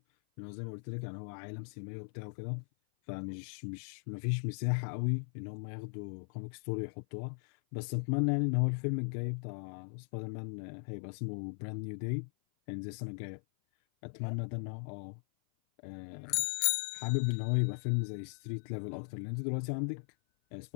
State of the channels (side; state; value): right; silent; 53 dB below the other